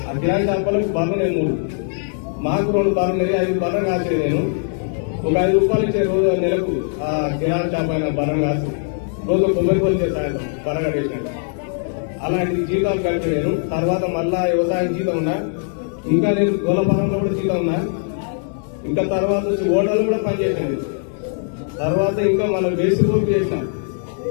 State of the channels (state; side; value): silent; right; 65 dB below the other